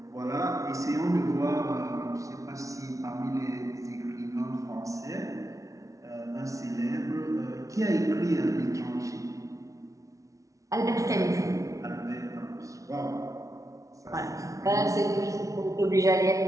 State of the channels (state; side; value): late; left; 0.16 ms